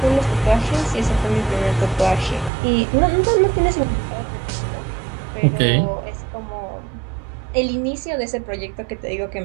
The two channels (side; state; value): left; drops out; at 2.5 s